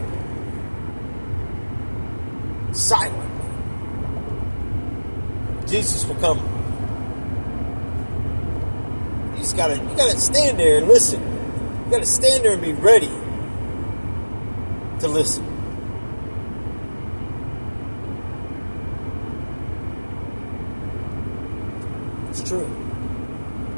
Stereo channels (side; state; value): both; inverted; correlation -1.00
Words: silently. Jesus will come. You gotta stand there and listen. You gotta stand there and be ready to listen. It's true.